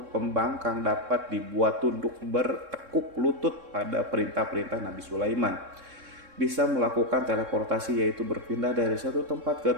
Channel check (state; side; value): late; left; 3.7 ms